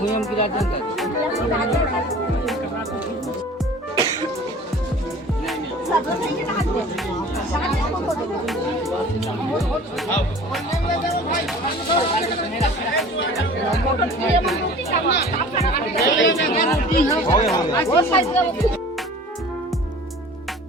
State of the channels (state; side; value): normal; both; correlation 0.44